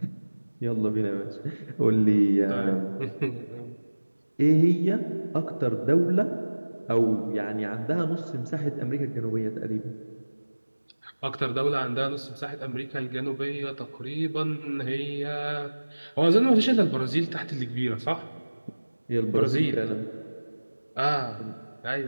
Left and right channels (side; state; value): both; inverted; correlation -1.00